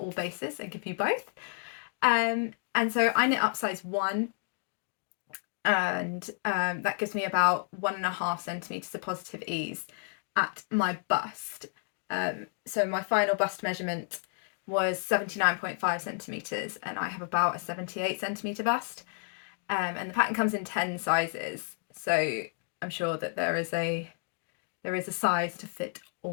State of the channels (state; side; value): silent; right; 57 dB below the other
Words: all bases and give you both. And so I knit up size 1, and that gives me about 1.5 centimetres of positive ease at my bust. So my final bust measurement was 79.5 centimetres, and I have about a 78 centimetre bust. And the pattern comes in 10 sizes, so I'm sure that there is a size to fit